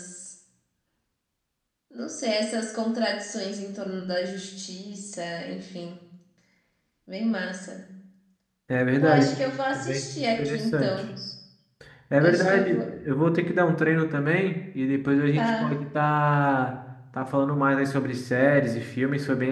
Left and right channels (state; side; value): identical; both; correlation 1.00